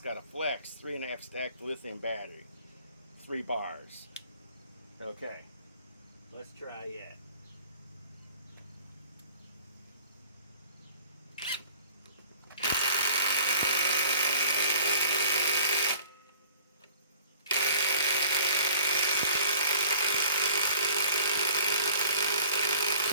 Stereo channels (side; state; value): both; inverted; correlation -0.49